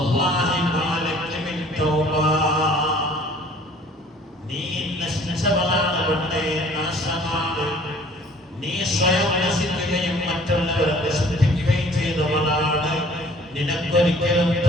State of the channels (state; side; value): normal; both; correlation 0.53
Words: മാ ലക മിൻ തൗബ, നീ നശിച്ചവളാണ് പെണ്ണേ, നാശമാണ്. നീ സ്വയം നശിക്കുകയും മറ്റുള്ളവരെ നശിപ്പിക്കുകയും ചെയ്തവളാണ്. നിനക്കൊരിക്കലും